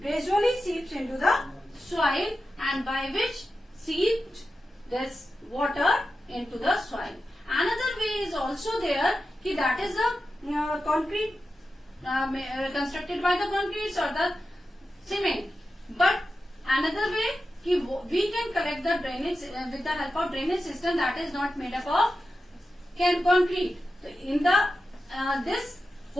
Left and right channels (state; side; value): normal; both; correlation 0.91